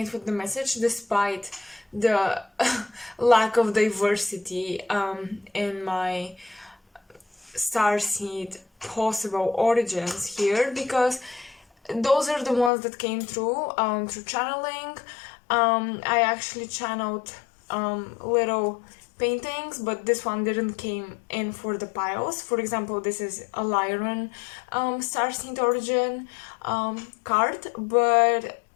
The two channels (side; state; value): right; drops out; at 12.7 s